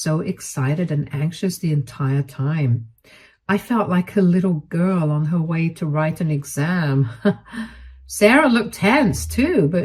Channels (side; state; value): both; identical; correlation 1.00